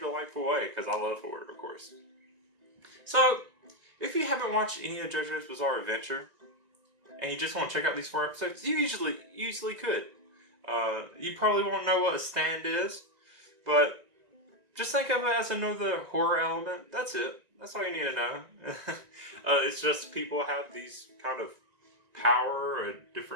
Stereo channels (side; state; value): left; late; 1.9 ms